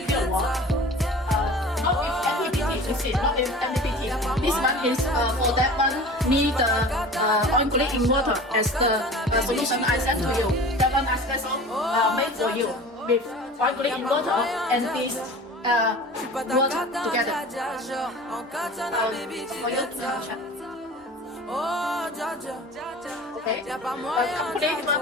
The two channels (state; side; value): normal; both; correlation 0.39